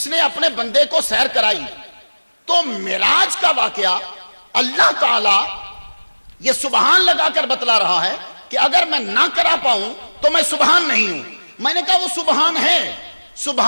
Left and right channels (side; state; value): both; inverted; correlation -1.00